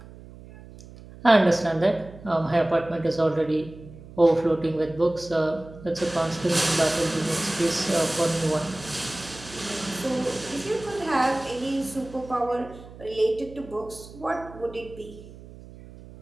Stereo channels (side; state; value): right; noise; hum, 18 dB below the sound